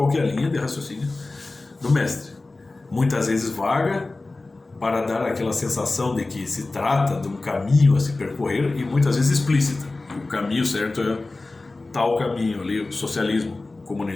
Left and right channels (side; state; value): right; quieter; 3.2 dB